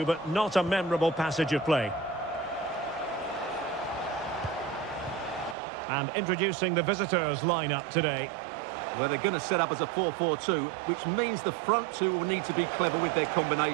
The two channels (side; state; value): left; drops out; at 5.6 s